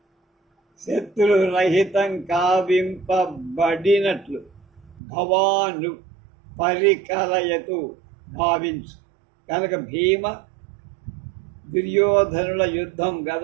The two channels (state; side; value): drops out; left; at 5.0 s